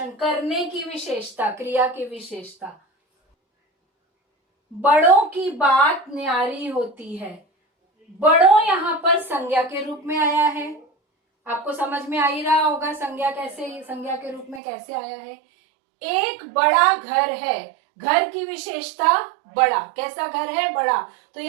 करने की विशेषता, क्रिया की विशेषता। बड़ों की बात न्यारी होती है, बड़ों यहाँ पर संज्ञा के रूप में आया है। आपको समझ में आ ही रहा होगा संज्ञा के रूप में कैसे आया है। एक बड़ा घर है, घर की विशेषता बड़ा, कैसा घर है? बड़ा, तो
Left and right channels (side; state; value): left; drops out; at 14.6 s